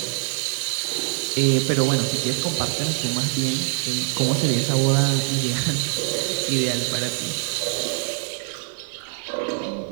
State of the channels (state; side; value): silent; left; digital silence